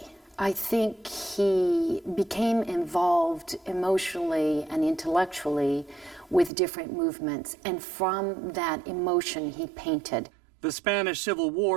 I think he became involved emotionally and intellectually with different movements, and from that emotion he painted. The Spanish Civil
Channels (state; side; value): drops out; left; at 6.5 s